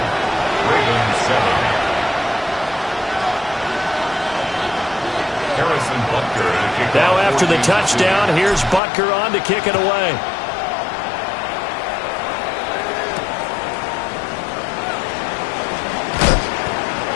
Ravens 7. Harrison Butker to kick Now off after the touchdown, here's Butker on to kick it away.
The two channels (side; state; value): right; drops out; at 8.8 s